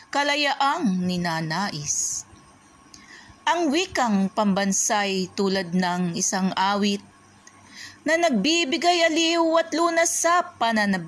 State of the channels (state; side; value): identical; both; correlation 1.00